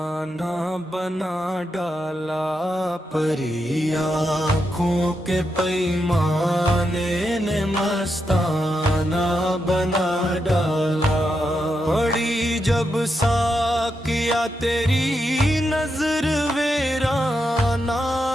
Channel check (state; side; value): normal; both; correlation 0.84